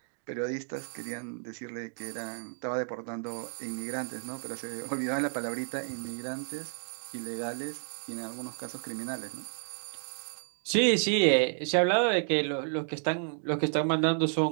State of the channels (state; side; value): silent; left; 56 dB below the other